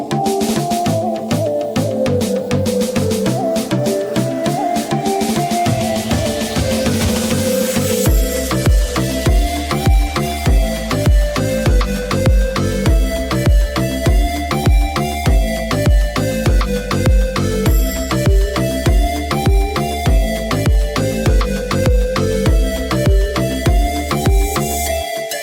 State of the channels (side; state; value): both; identical; correlation 1.00